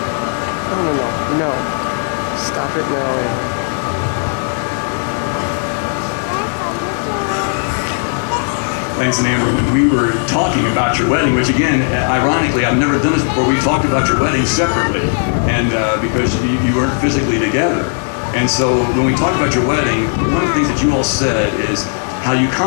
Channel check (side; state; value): right; silent; 60 dB below the other